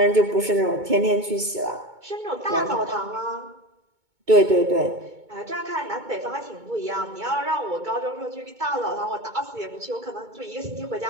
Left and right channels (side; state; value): left; late; 2.2 ms